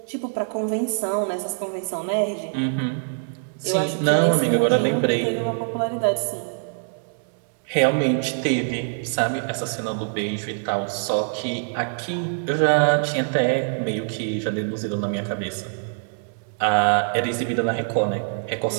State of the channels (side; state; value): left; silent; 63 dB below the other